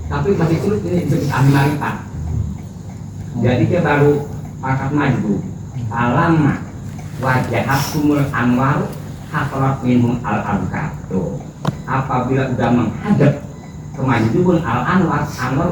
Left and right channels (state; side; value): identical; both; correlation 1.00